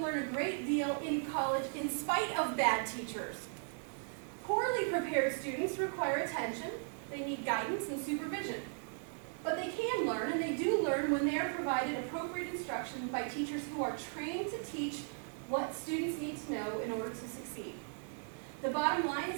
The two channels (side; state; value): left; silent; 53 dB below the other